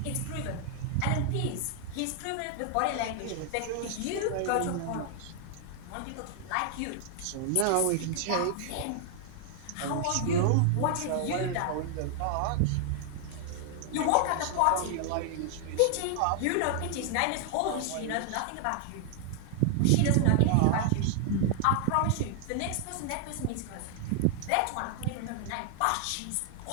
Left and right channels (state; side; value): different; both; correlation 0.00